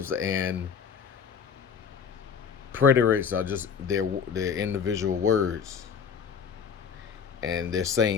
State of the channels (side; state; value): right; quieter; 6.9 dB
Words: and preterics are just their individual words. And they're